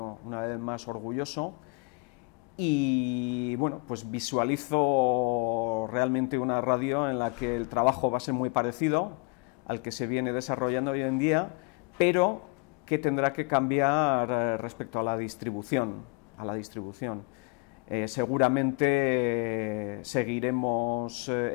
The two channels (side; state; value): right; quieter; 31.7 dB